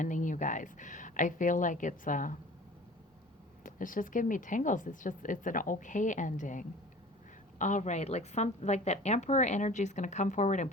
you guys. I feel like it's just giving me tingles. It's an okay ending. All right, like that Emperor energy is going to come forward and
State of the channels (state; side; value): normal; both; correlation 0.43